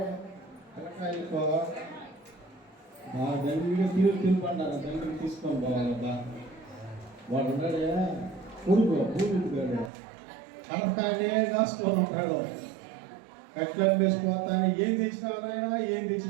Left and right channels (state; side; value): drops out; left; at 9.9 s